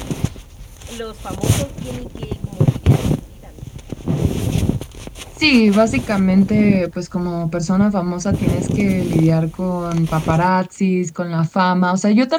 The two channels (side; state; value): both; identical; correlation 1.00